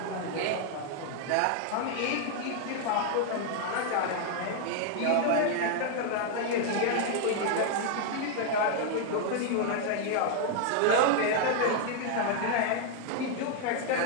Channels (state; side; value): different; both; correlation 0.00